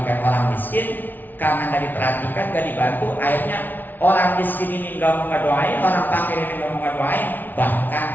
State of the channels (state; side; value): late; right; 0.086 ms